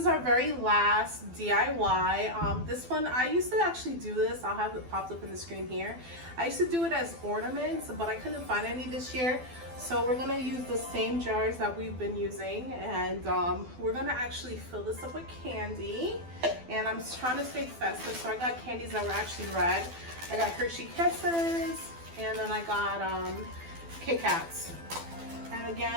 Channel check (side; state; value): left; late; 12 ms